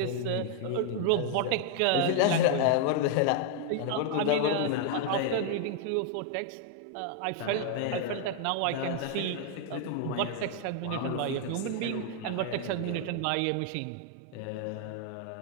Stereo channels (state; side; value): different; both; correlation 0.00